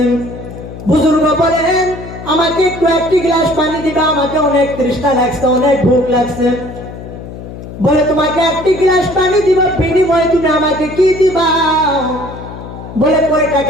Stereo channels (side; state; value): left; noise; hum, 12 dB below the sound